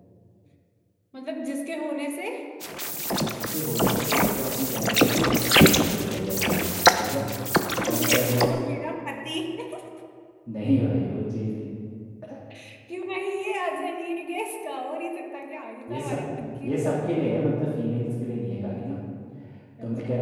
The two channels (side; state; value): both; identical; correlation 1.00